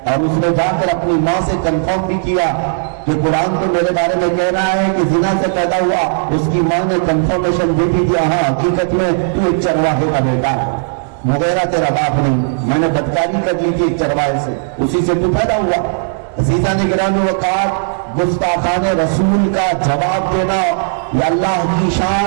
اور اس نے جا کر اپنی ماں سے کنفرم بھی کیا کہ قرآن تو میرے بارے میں کہہ رہا ہے کہ زنا سے پیدا ہوا۔ اس کی ماں نے کنفرمیشن دی تھی کہ ہاں حقیقت میں تو ایک چرواہے کا بیٹا ہے، مغیرہ تیرا باپ نہیں، میں نے بدکاری کر لی تھی ایک چرواہے سے، اسی سے تو پیدا ہوا۔ عزیزان گرامی وقار، گستاخان رسول کا جواب دینا یہ اللہ کی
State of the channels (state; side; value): silent; left; digital silence